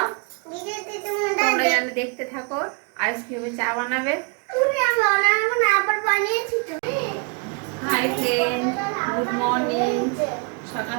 তোমরা যেন দেখতে থাকো আইস কিভাবে চা বানাবে। Hi friend, good morning. সকাল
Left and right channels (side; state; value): left; quieter; 33.4 dB